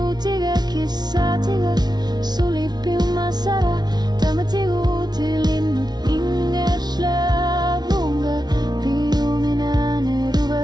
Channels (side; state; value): left; late; 0.19 ms